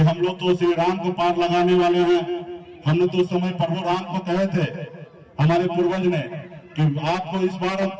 लोग तो श्री राम को पार लगाने वाले हैं। हमने तो उस समय प्रभु राम को कहे थे हमारे पूर्वज ने कि आपको इस बार हम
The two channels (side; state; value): both; identical; correlation 1.00